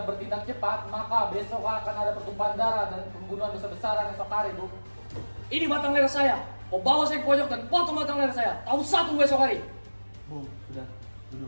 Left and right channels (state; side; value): inverted; both; correlation -1.00